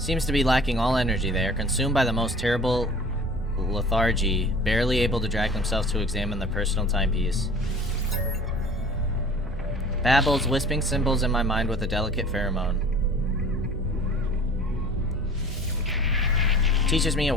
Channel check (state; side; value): normal; both; correlation 0.45